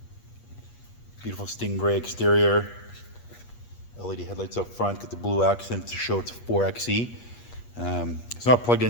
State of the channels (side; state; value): right; late; 8.4 ms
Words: Beautiful stingray exterior, LED headlights up front, got the blue accent to show it's 4xe. It's not plugged